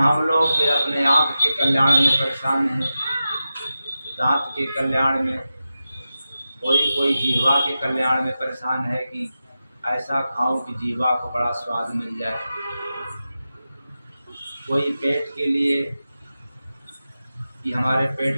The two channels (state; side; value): inverted; both; correlation -0.92